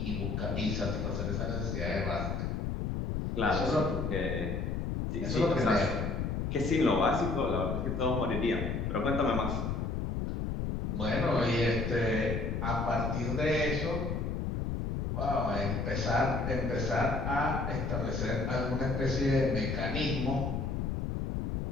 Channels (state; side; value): noise; left; rumble, 1 dB below the sound